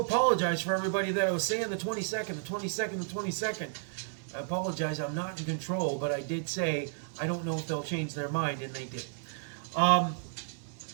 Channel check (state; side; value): silent; left; digital silence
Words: for everybody that I was saying the 22nd, the 22nd, the 22nd. I apologize, I'm not in control, but I did say I don't know if they'll change their mind, and they did.